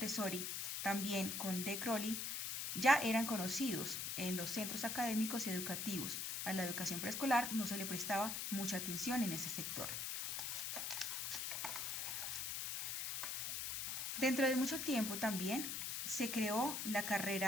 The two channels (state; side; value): noise; left; hiss, 2 dB below the sound